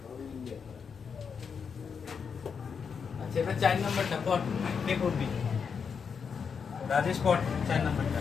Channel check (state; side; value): quieter; right; 6.2 dB